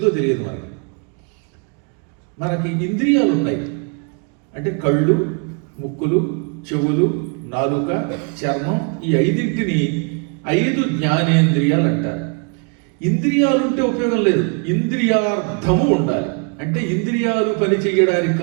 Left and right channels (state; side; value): quieter; left; 37.0 dB